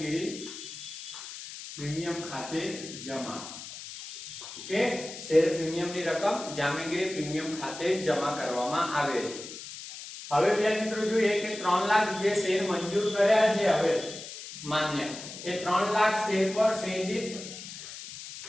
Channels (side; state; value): left; noise; hiss, 11 dB below the sound